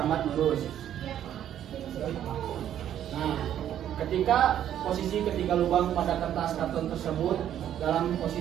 lurus. Nah, ketika lubang pada kertas karton tersebut dalam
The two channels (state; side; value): quieter; left; 10.7 dB